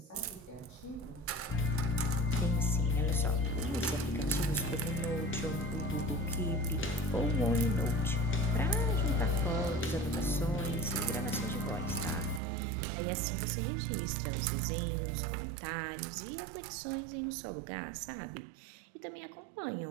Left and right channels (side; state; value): left; drops out; at 12.4 s